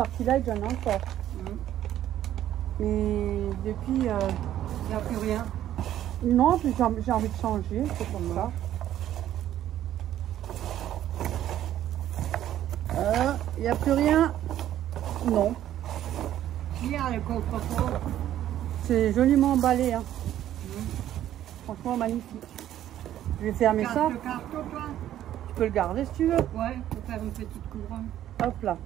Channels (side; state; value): left; quieter; 12.0 dB